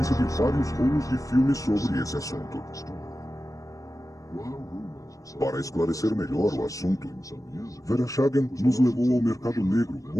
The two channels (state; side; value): late; right; 0.16 ms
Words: de vários rolos de filmes sobre esse assunto. Para esclarecer melhor o assunto, Veroshagen nos levou ao mercado negro,